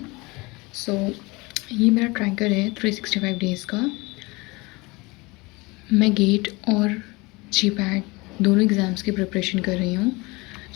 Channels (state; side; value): quieter; right; 24.4 dB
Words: So ये मेरा tracker है 365 डेज़ का। मैं गेट और जी पैट दोनों एग्ज़ाम्स की प्रिपरेशन कर रही हूँ।